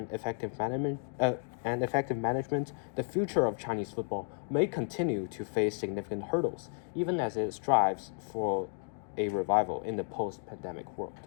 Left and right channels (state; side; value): silent; right; 56 dB below the other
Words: effective management, the future of Chinese football may continue to face significant hurdles, even as it strives for a revival in the post-pandemic world.